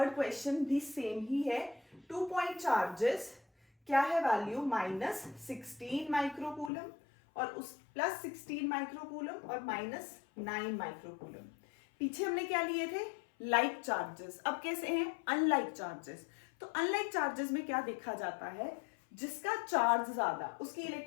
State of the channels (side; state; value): right; drops out; at 6.7 s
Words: क्वेश्चन भी सेम ही है। 2 पॉइंट चार्जेस, क्या है वैल्यू -16 माइक्रोकूलम और उस +16 माइक्रोकूलम और -9 माइक्रोकूलम। पीछे हमने क्या लिए थे लाइक चार्जेस, अब कैसे हैं अनलाइक चार्जेस। तो अनलाइक चार्जेस में क्या देखा जाता है, जिसका चार्ज ज्यादा उसकी